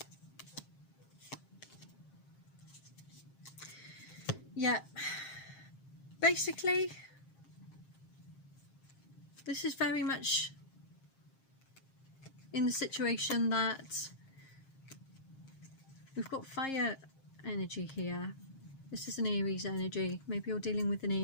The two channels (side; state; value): right; late; 7.5 ms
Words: Yeah, basically this is very much in the situation that we've got fire energy here. This is an Aries energy. Maybe you're dealing with an